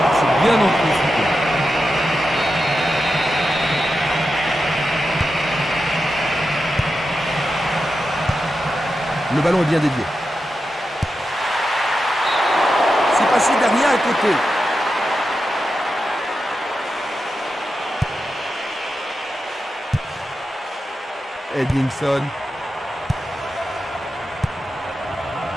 c'est bien anticipé. Le ballon est bien dévié. C'est passé derrière à côté. Edmondson.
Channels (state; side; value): normal; both; correlation 0.89